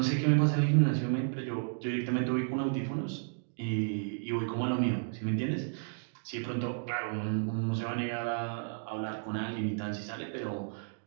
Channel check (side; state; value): left; silent; digital silence